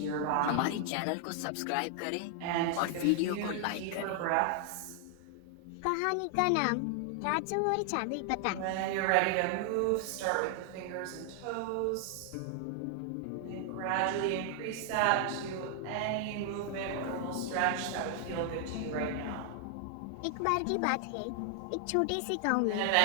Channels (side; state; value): both; different; correlation 0.00